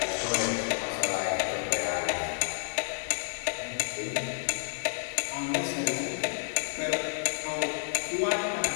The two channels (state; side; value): silent; right; digital silence